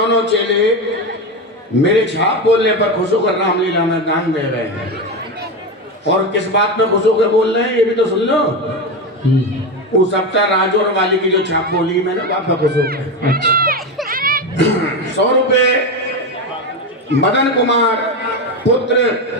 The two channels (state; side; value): normal; both; correlation 0.15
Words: चेले मेरे छाप बोलने पर खुश होकर रामलीला में दान दे रहे हैं। और किस बात में खुश होकर बोल रहे हैं ये भी तो सुन लो। वो सप्ताह राजौर वाली की जो छाप बोली मैंने बात में खुश होकर 100 रुपए मदन कुमार पुत्र